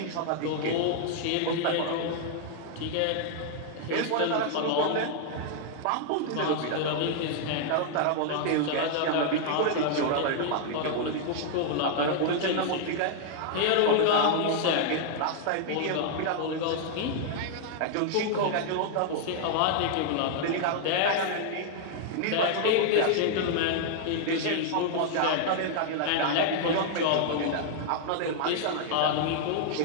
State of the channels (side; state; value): both; different; correlation 0.00